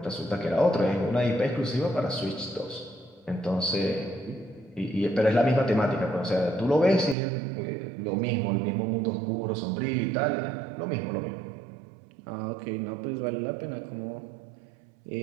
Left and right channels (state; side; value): drops out; left; at 7.2 s